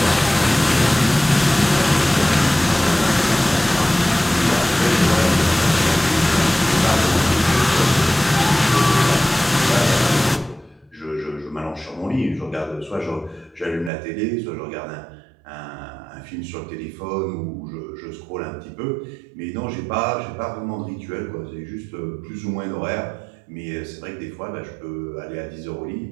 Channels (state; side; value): drops out; left; at 13.9 s